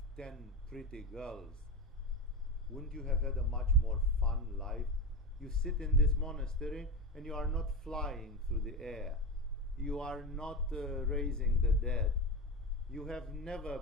10 pretty girls, wouldn't you have had a much more fun life? You sit in this monastery and you are not flying through the air. You are not raising the dead. You have never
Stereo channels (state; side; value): normal; both; correlation 0.20